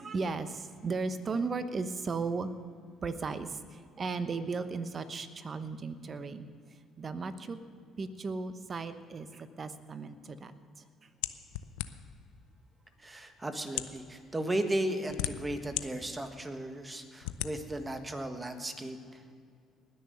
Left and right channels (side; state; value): both; normal; correlation 0.76